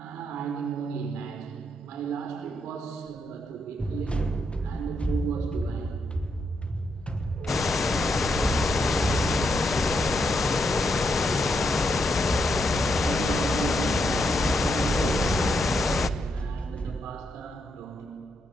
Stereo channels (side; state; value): both; normal; correlation 0.80